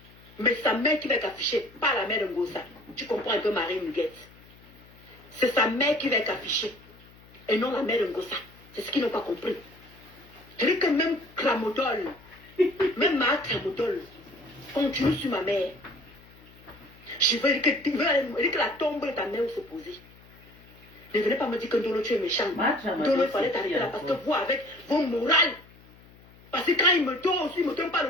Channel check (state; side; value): noise; left; hum, 24 dB below the sound